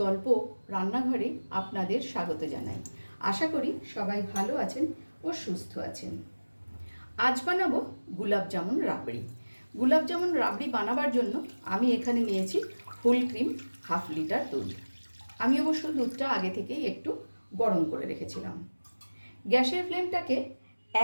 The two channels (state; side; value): inverted; both; correlation -1.00